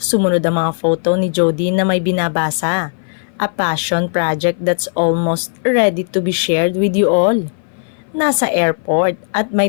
ang mga photo ni Jody na may binabasa. A passion project that's almost ready to be shared with you all. Nasa airport at may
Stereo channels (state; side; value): silent; right; 58 dB below the other